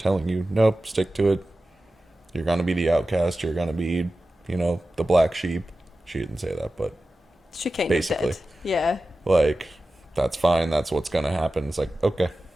you, nope, stick to it. You're going to be the outcast. You're going to be, the black sheep. She didn't say that, but She kind basically. of did. Yeah. Like, that's fine. That's what's going to happen. It's like, okay.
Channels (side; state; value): both; normal; correlation 0.94